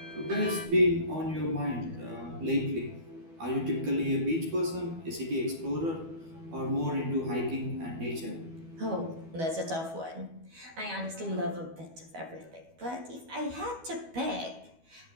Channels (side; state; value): left; late; 12 ms